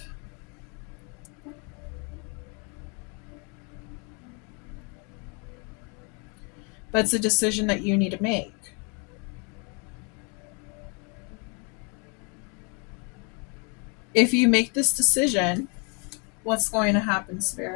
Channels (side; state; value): right; quieter; 34.4 dB